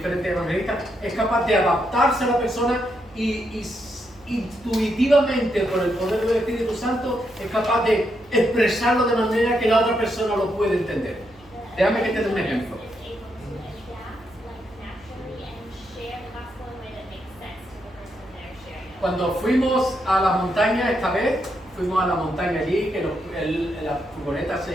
evangelistas, es capaz de adaptarse a la persona y intuitivamente, por el poder del Espíritu Santo, es capaz de expresarlo de manera que la otra persona lo puede entender. Déjame que te dé un ejemplo. Cuando fuimos a la montaña esta vez, fuimos a la montaña allí, que la furgoneta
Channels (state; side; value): noise; right; hum, 27 dB below the sound